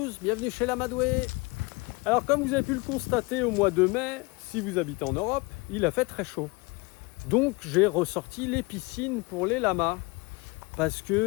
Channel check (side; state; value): right; quieter; 26.1 dB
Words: bienvenue chez l'Amadoué. Alors comme vous avez pu le constater au mois de mai, si vous habitez en Europe, il a fait très chaud. Donc j'ai ressorti les piscines pour les lamas. Parce